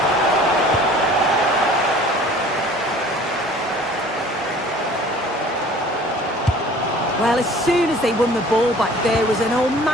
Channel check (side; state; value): both; normal; correlation 0.49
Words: Well, as soon as they won the ball back, there was an